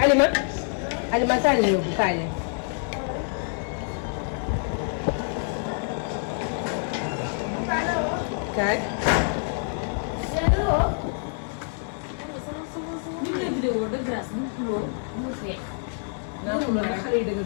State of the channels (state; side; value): silent; right; 61 dB below the other